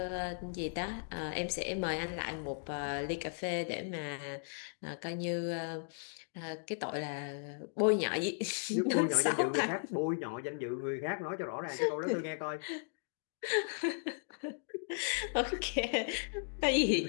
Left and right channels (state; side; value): silent; right; digital silence